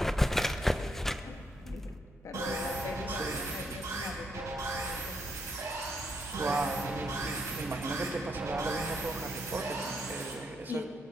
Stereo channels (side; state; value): both; normal; correlation 0.76